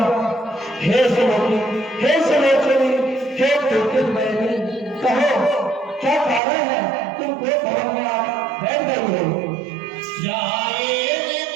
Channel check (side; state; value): left; drops out; at 6.4 s